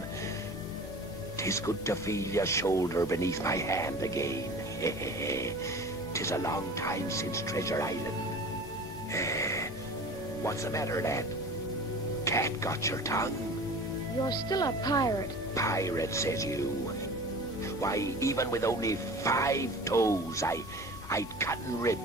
'Tis good to feel your shoulder beneath my hand again. 'Tis a long time since Treasure Island. What's the matter, lad? Cat got your tongue? You're still a pirate. Pirate, says you. Why, even with only 5 toes, I'd cut and rip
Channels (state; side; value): normal; both; correlation 0.39